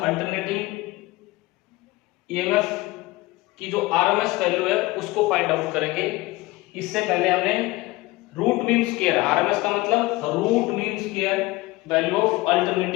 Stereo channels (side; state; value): right; quieter; 20.3 dB